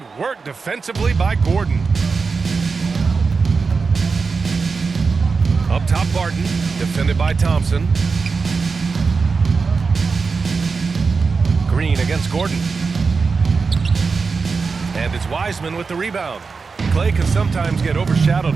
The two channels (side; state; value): left; quieter; 4.8 dB